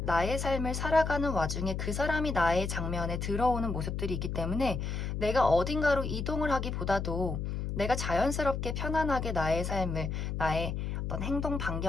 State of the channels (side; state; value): left; noise; hum, 3 dB below the sound